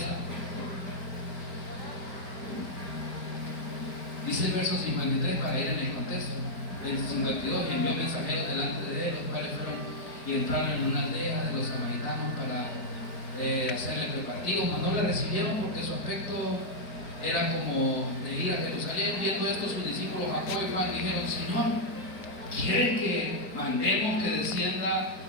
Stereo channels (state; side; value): late; right; 4.7 ms